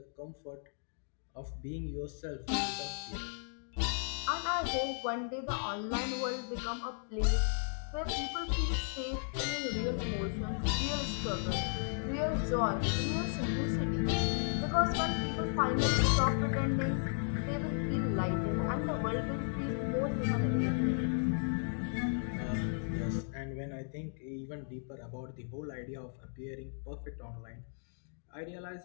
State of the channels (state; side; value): silent; right; digital silence